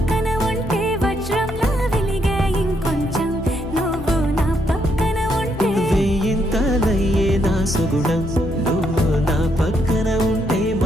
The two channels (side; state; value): both; normal; correlation 0.75